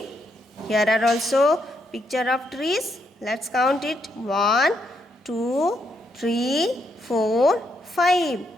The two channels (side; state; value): both; normal; correlation 0.77